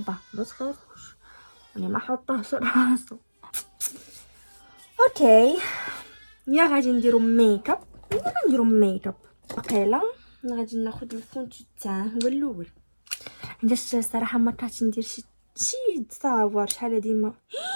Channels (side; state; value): both; inverted; correlation -1.00